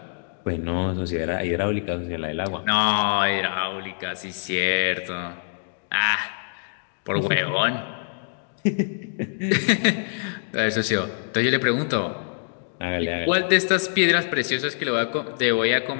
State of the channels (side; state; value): right; silent; digital silence